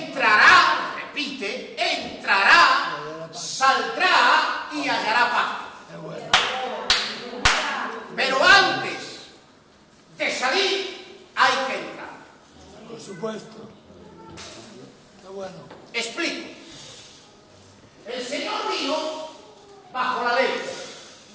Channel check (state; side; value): identical; both; correlation 1.00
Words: repite, entrará, saldrá y hallará paz. Qué bueno. Pero antes de salir, hay que entrar. Por supuesto. Qué bueno. Explico. El Señor vino bajo la ley,